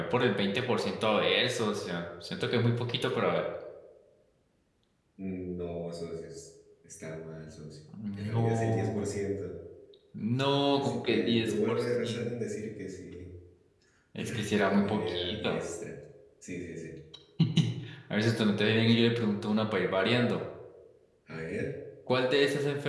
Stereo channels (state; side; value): identical; both; correlation 1.00